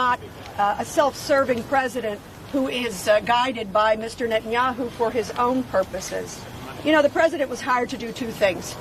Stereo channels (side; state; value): both; identical; correlation 1.00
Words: a self-serving president who is guided by Mr. Netanyahu for his own purposes. You know, the president was hired to do two things: